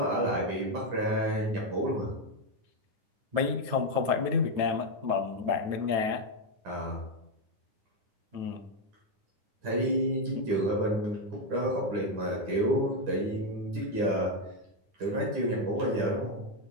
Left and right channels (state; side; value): late; left; 9.9 ms